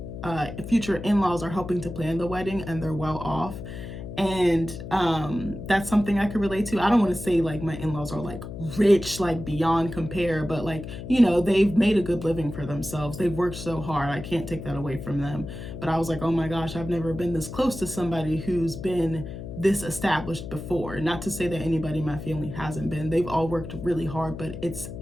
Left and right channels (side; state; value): left; noise; hum, 9 dB below the sound